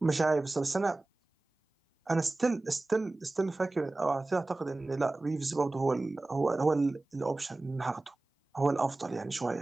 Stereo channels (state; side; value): quieter; left; 3.0 dB